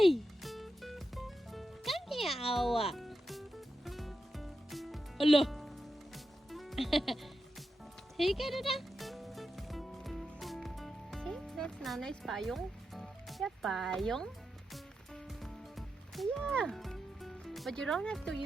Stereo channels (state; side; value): normal; both; correlation 0.88